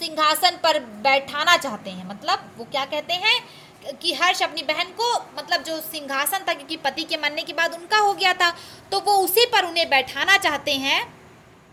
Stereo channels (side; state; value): both; identical; correlation 1.00